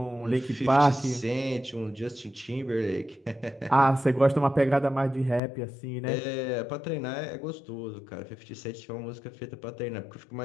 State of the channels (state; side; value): drops out; right; at 5.4 s